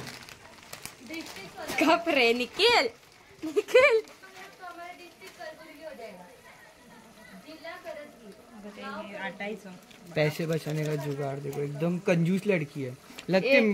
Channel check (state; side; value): identical; both; correlation 1.00